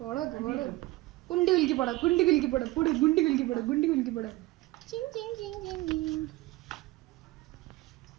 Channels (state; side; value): quieter; left; 19.2 dB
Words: കുണ്ടി കുലുക്കി പോടാ, കുണ്ടി കുലുക്കി പോടാ, പൊട് ഗുണ്ടി കുലുക്കി പോടാ, ഗുണ്ടി കുലുക്കി പോടാ.